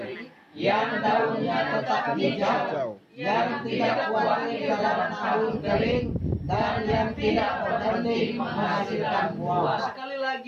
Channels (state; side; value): identical; both; correlation 1.00